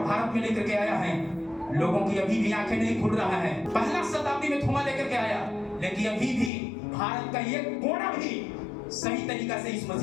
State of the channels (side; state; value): right; drops out; at 6.5 s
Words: भारत में लेकर के आया है। लोगों की अभी भी आंखें नहीं खुल रहा है। पहला शताब्दी में थोमा लेकर के आया, लेकिन अभी भी भारत का एक कोना भी सही तरीका से इस